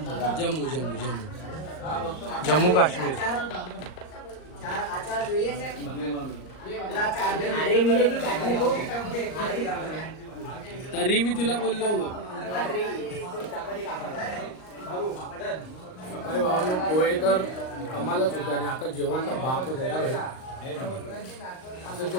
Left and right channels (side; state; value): right; late; 38 ms